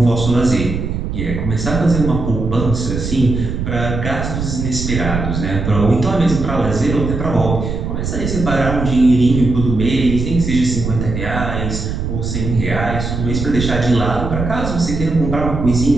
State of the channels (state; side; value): noise; right; rumble, 4 dB below the sound